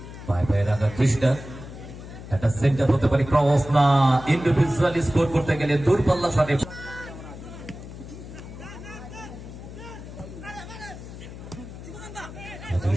পায়ে পায়ে রাখার চেষ্টা, একটা সেন্টার হতে পারে, ক্রস না, ইন্ডিভিজুয়ালি স্কোর করতে গেলে দূরপাল্লা শটে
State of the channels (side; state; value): left; noise; hum, 13 dB below the sound